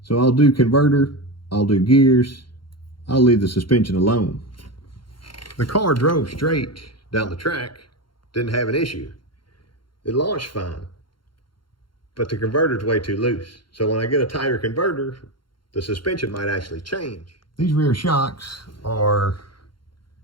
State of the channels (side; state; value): right; late; 0.72 ms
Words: So I'll do converter, I'll do gears, I'll leave the suspension alone. The car drove straight down the track, didn't have an issue. It launched fine, but the converter's way too loose. So when I get a tighter converter, the suspension might actually change. These rear shocks are,